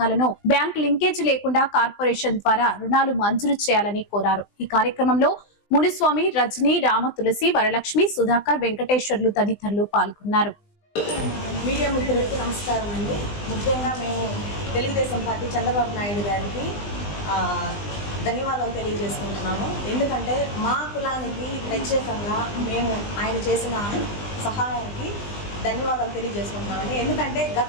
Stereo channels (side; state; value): right; late; 20 ms